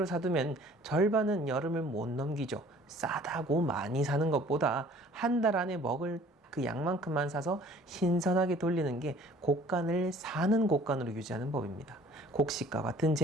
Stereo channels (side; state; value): both; normal; correlation 0.52